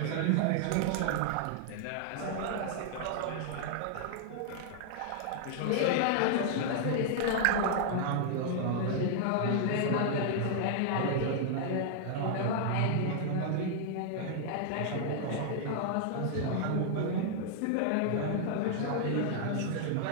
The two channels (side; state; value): both; different; correlation -0.01